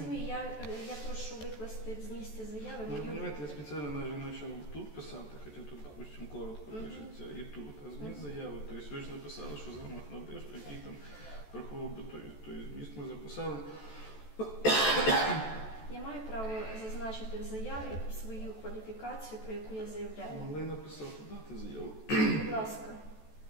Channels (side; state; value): right; late; 14 ms